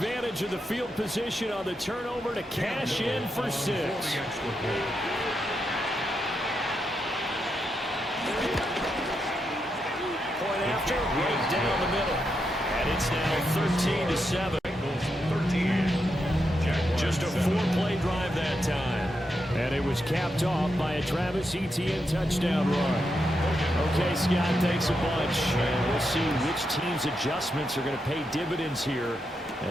of the field position on the turnover to cash in for 6. Point after, right down the middle. And it's now 13-7. Just a 4-play drive that time. And it was capped off by a Travis Etienne touchdown run. Okay, Scott, thanks a bunch. And we'll see which team's adjustments are going to pay dividends here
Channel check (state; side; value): normal; both; correlation 0.84